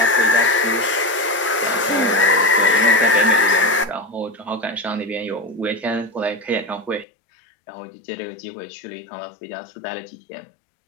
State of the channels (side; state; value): right; drops out; at 7.1 s